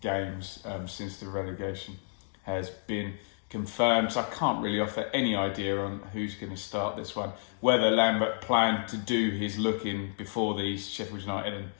games since the relegation has been confirmed. So I can't really offer any idea on who's going to start this one. Whether Lambert planned to do his looking before these Sheffield United and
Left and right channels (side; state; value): right; silent; digital silence